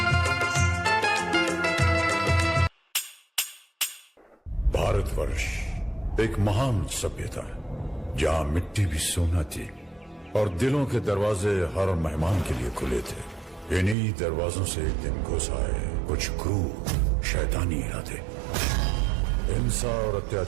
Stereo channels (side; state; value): left; drops out; at 14.0 s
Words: भारतवर्ष एक महान सभ्यता है जहाँ मिट्टी भी सोना थी और दिलों के दरवाजे हर मेहमान के लिए खुले थे। इन्हीं दरवाजों से एक दिन घुस आए कुछ क्रूर शैतानी इरादे। हिंसा और